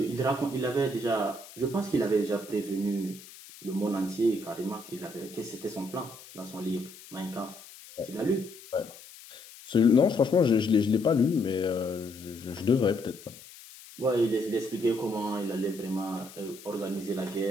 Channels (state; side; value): noise; left; hiss, 18 dB below the sound